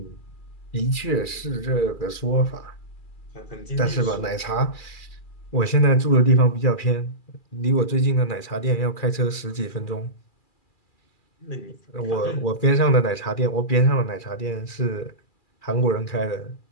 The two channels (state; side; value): late; right; 2.4 ms